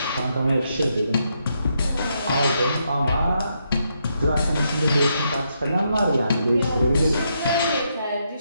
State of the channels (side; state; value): both; inverted; correlation -0.79